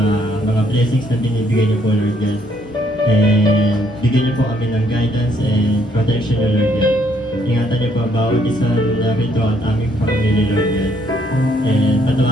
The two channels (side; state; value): both; normal; correlation 0.68